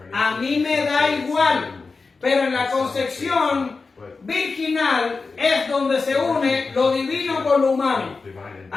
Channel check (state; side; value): quieter; right; 4.3 dB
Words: A mí me da igual, pero en la concepción virginal es donde se une lo divino con lo humano.